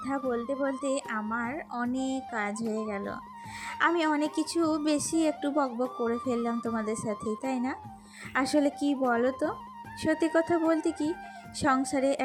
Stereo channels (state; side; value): identical; both; correlation 1.00